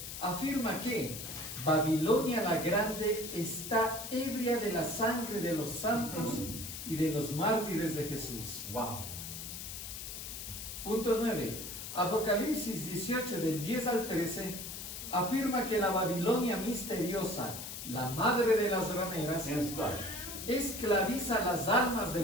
afirma que Babilonia la Grande está ebria de la sangre de los santos y de los mártires de Jesús. Wow. Punto 9. Apocalipsis 18, del 10 al 13, afirma que la Babilonia misteriosa, la madre de las rameras, Yes, God. esclaviza las almas de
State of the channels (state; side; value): noise; left; hiss, 8 dB below the sound